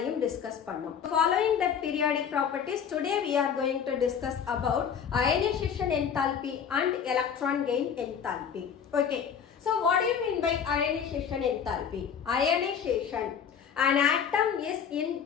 discuss பண்ணோம். Following the periodic properties, today we are going to discuss about ionization enthalpy and electron gain enthalpy. Okay. So what do you mean by ionization enthalpy? Ionization. An atom is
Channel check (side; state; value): right; quieter; 7.5 dB